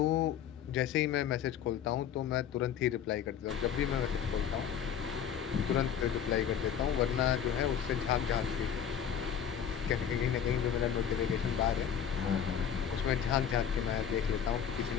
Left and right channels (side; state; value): right; quieter; 8.5 dB